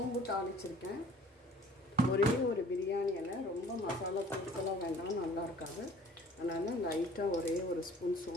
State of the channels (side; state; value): both; normal; correlation 0.51